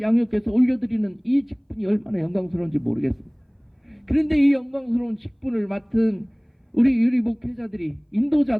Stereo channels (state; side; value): identical; both; correlation 1.00